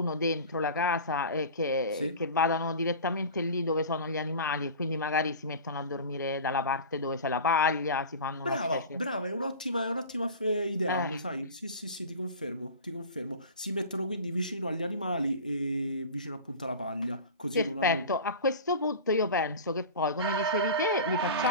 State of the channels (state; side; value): inverted; both; correlation -0.34